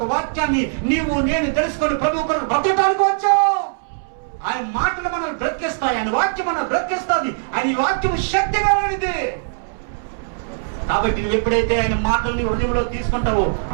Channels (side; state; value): left; silent; 65 dB below the other